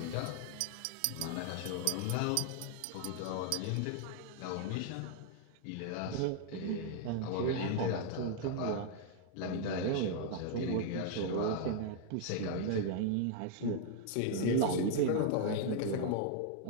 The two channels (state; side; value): different; both; correlation 0.00